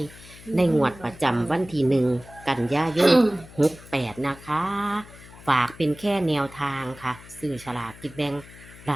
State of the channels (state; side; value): noise; left; hum, 20 dB below the sound